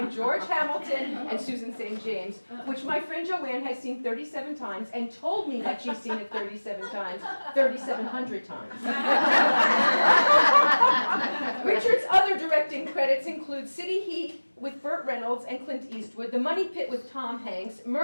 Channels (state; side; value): inverted; both; correlation -1.00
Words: George Hamilton and Susan St. James, which my friend Joanne has seen 37 times and told me that she's seen it 37 times, 3,700 times. Richard's other directing credits include City Heat with Burt Reynolds and Clint Eastwood, The Money Pit with Tom Hanks,